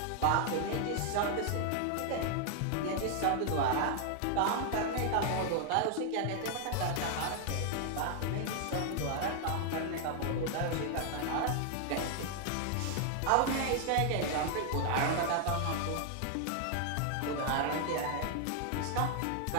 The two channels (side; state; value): both; different; correlation 0.00